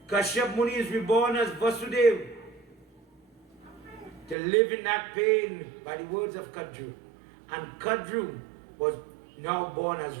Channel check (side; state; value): left; drops out; at 4.4 s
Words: Kashyap Muni is reborn as Vasudeva to live in that pain by the words of Kadru. And Kadru was now born as